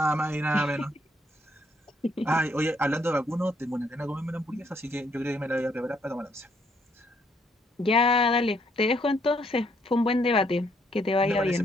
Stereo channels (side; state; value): both; normal; correlation 0.70